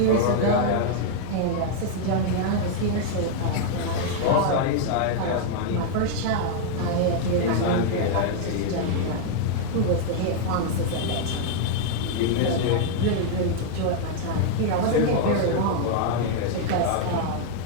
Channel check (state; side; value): different; both; correlation 0.00